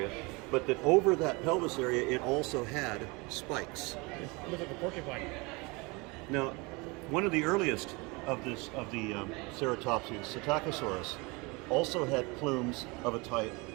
but that over that pelvis area it also had spikes. It looks like a porcupine. Now, one of the earliest of the ceratopsians, Psittacosaurus, also had plumes of a type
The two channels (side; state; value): left; quieter; 26.7 dB